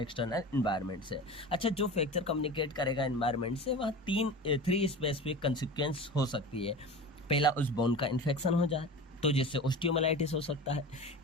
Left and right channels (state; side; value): normal; both; correlation 0.32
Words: एक्सटर्नल एनवायरनमेंट से। अच्छा, जो फ्रैक्चर कम्युनिकेट करेगा एनवायरनमेंट से, वह थ्री स्पेसिफिक कंसिक्वेंस हो सकती है। पहला, उस बोन का इन्फेक्शन हो जाए तो जिससे ओस्टियोमाइलाइटिस हो सकता है।